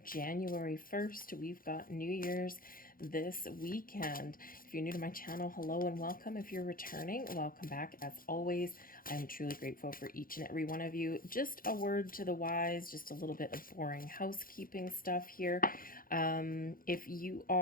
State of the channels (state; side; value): late; right; 0.41 ms